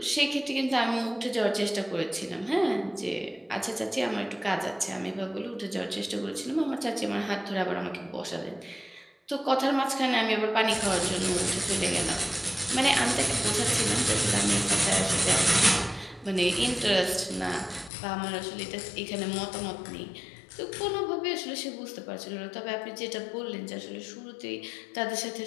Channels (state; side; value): drops out; right; at 17.9 s